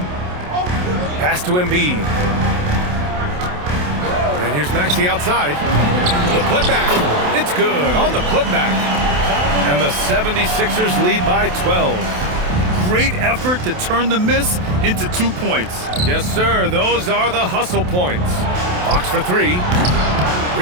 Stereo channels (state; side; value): late; left; 28 ms